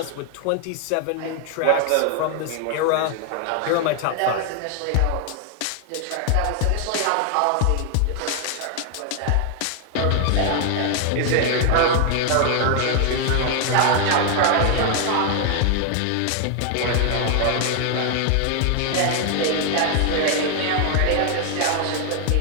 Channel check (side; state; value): both; different; correlation 0.00